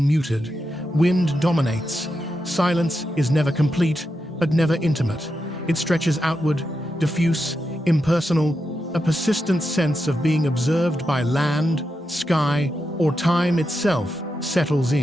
Wind dominates. Silence is never complete, but never intimate. It stretches outward, diffuse, impersonal, a persistent sense of being observed by land, sky, or time itself settles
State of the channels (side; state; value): both; normal; correlation 0.87